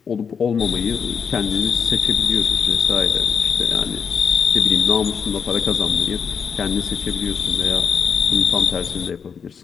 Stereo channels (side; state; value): right; quieter; 6.5 dB